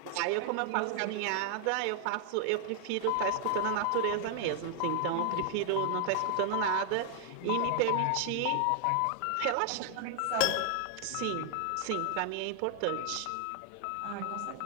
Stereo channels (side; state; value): both; different; correlation 0.00